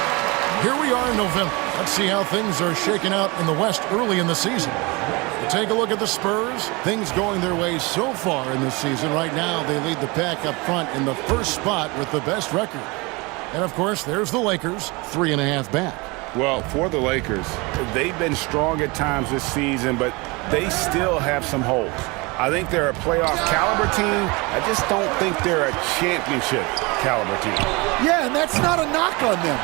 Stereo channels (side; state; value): left; quieter; 26.0 dB